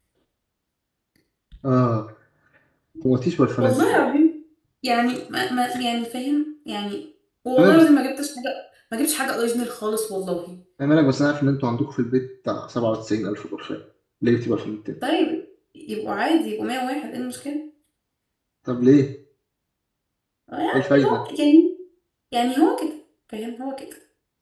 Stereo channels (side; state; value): both; identical; correlation 1.00